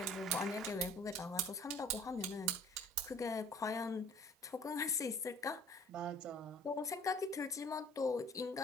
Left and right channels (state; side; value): normal; both; correlation 0.50